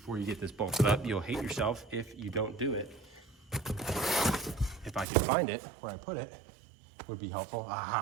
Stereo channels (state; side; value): drops out; left; at 5.1 s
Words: you get this bolted up. You'll hate yourself if you don't do it. If I could find it, where I put it, would be helpful.